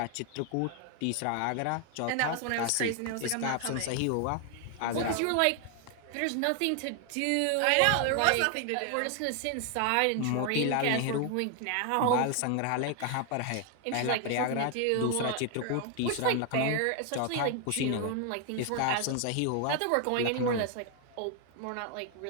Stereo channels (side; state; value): both; different; correlation 0.00